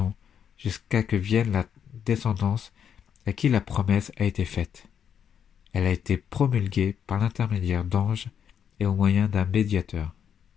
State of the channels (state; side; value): quieter; right; 8.2 dB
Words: jusqu'à que vienne la descendance à qui la promesse a été faite. Elle a été promulguée par l'intermédiaire d'anges et au moyen d'un médiateur.